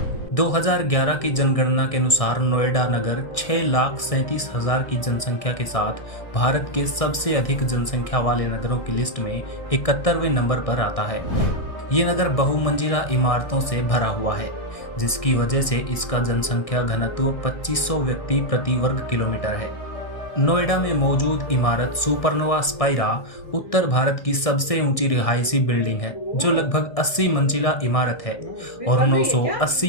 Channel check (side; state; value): right; late; 1.6 ms